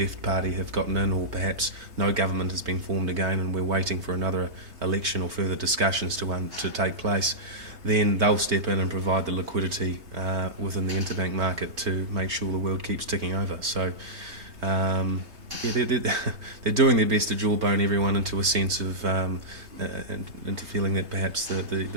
party have gotten in, or perhaps no government has been formed again and we're waiting for another election or further discussions to take place, then they'll step in and provide the liquidity within the interbank market to make sure the world keeps ticking over. So they're doing their best to jawbone everyone into a sense of into feeling that perhaps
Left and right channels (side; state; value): left; late; 3.3 ms